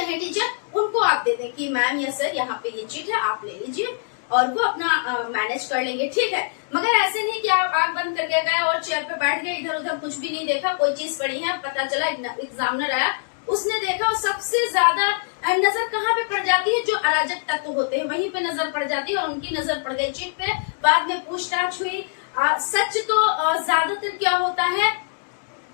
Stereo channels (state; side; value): silent; right; digital silence